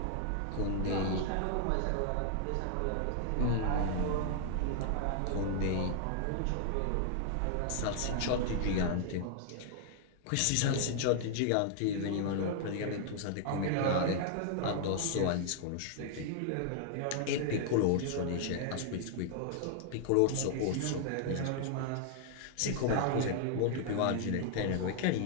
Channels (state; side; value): different; both; correlation 0.00